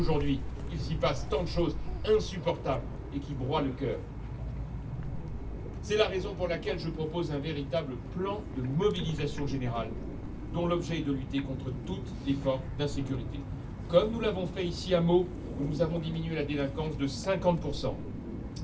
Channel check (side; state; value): both; identical; correlation 1.00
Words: il s'y passe tant de choses insupportables et qui broient le cœur. C'est la raison pour laquelle je propose un véritable plan de mobilisation générale, dont l'objet est de lutter contre toutes les formes d'insécurité. Comme nous l'avons fait ici à Meaux, où nous avons diminué la délinquance de 50%.